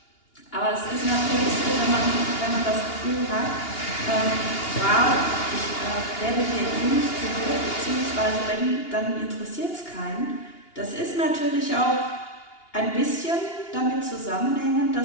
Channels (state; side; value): late; right; 2.8 ms